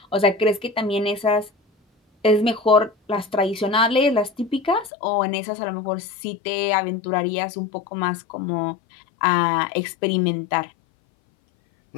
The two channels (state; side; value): drops out; right; at 4.9 s